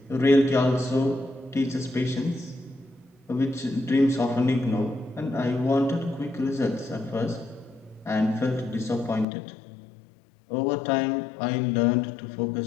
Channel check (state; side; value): drops out; right; at 9.2 s